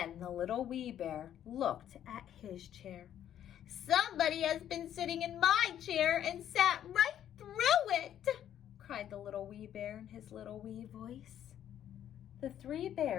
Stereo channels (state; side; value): quieter; right; 10.6 dB